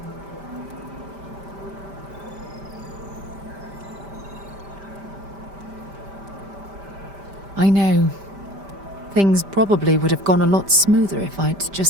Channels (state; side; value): late; left; 5.1 ms